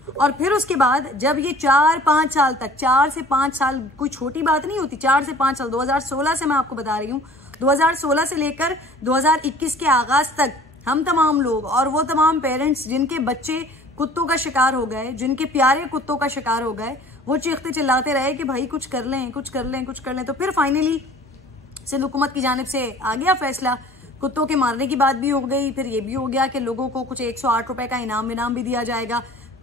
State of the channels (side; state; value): both; normal; correlation 0.48